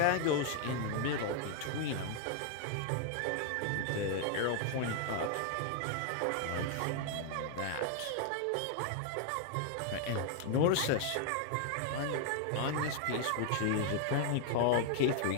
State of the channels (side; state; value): both; different; correlation 0.00